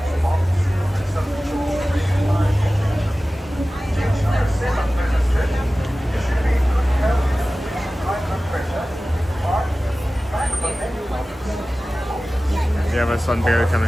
We have a sun barely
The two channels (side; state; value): both; normal; correlation 0.96